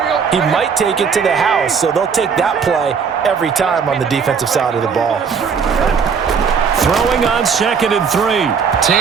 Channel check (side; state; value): left; quieter; 6.2 dB